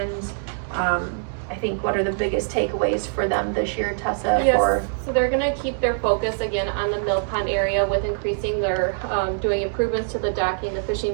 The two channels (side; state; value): left; silent; 63 dB below the other